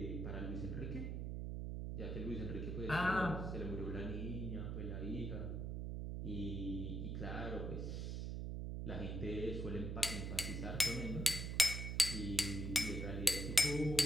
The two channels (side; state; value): right; noise; hum, 3 dB below the sound